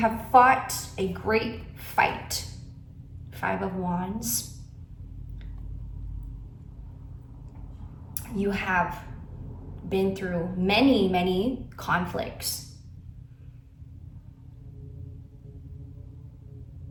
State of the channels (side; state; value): both; identical; correlation 1.00